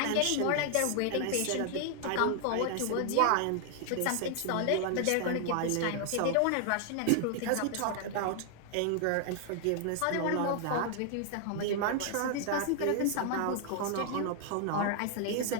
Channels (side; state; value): both; different; correlation 0.00